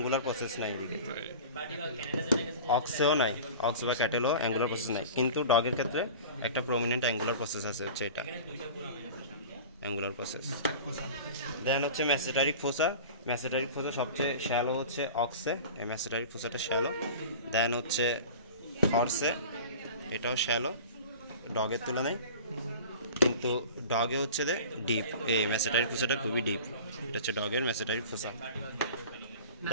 প্রসেস নাই, এদিকে অক্সেও নাই, অক্স বা ক্যাটেলও অ্যাঙ্গুলার প্রসেস নাই। কিন্তু ডগের ক্ষেত্রে একটা প্রমিনেন্ট অ্যাঙ্গুলার প্রসেস আছে, হচ্ছে এটা অ্যাঙ্গুলার প্রসেস। দেন হচ্ছে ম্যাসেটারিক ফোসা। ম্যাসেটারিক ফোসা সবচেয়ে শ্যালো হচ্ছে অক্সে, এই ম্যাসেটারিক ফোসাটা শ্যালো। দেন হচ্ছে হর্সে, এটাও শ্যালো ডগের তুলনায়, কিন্তু ডগে হচ্ছে যে ডিপ, এই ম্যাসেটারিক ফোসাটা খুবই ডিপ, এটা হচ্ছে ডগের ম্যাসেটারিক ফোসা।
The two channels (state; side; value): inverted; both; correlation -0.37